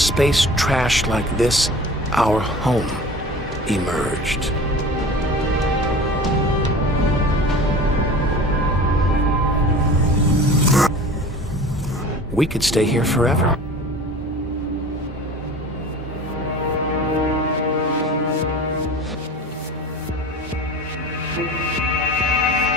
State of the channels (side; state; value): both; normal; correlation 0.38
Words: trash like this, our home emerged. We could stay here forever.